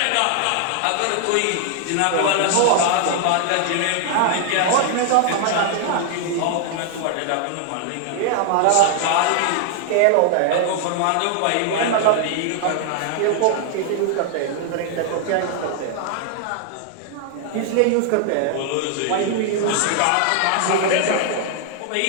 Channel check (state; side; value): different; both; correlation 0.00